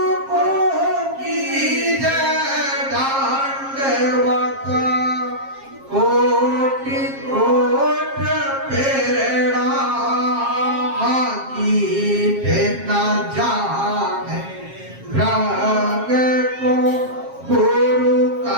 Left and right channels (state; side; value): late; left; 7.4 ms